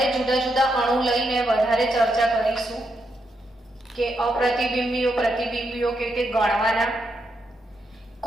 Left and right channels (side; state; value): both; normal; correlation 0.82